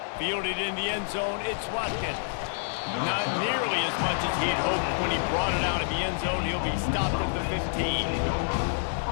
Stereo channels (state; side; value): silent; right; digital silence